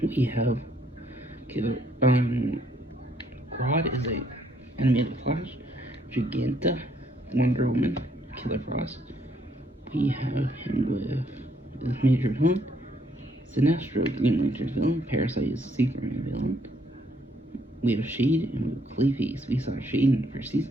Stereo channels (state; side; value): normal; both; correlation 0.69